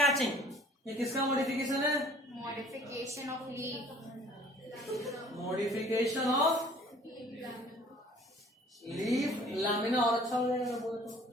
ये किसका मॉडिफिकेशन है? Modification of leaf. Modification of leaf lamina और अच्छा हो जाएगा बोले तो।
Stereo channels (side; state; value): both; normal; correlation 0.52